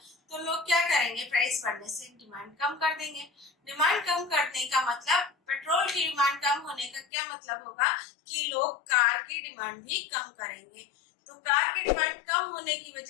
तो लोग क्या करेंगे, प्राइस बढ़ने से डिमांड कम कर देंगे। डिमांड कम करने का मतलब, पेट्रोल की डिमांड कम होने का क्या मतलब होगा कि लोग कार की डिमांड भी कम करेंगे। तो कार की डिमांड कम होने की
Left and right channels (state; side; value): drops out; right; at 7.1 s